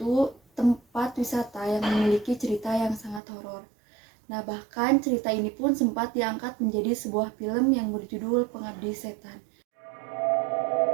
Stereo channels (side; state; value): left; drops out; at 3.2 s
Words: tempat wisata yang memiliki cerita yang sangat horor. Nah, bahkan cerita ini pun sempat diangkat menjadi sebuah film yang berjudul Pengabdi Setan.